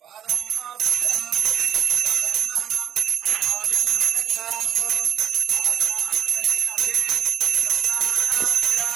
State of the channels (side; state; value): left; quieter; 10.1 dB